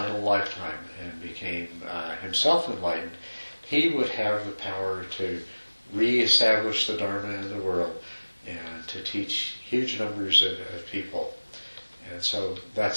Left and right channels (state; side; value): inverted; both; correlation -1.00